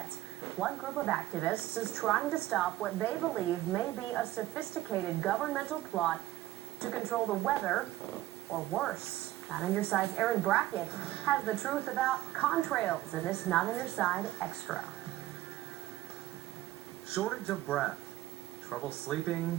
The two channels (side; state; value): left; quieter; 15.2 dB